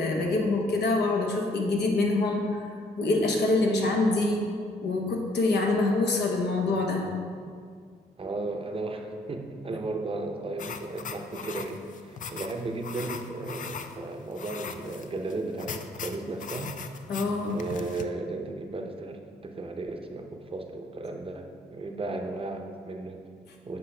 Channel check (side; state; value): both; normal; correlation 0.64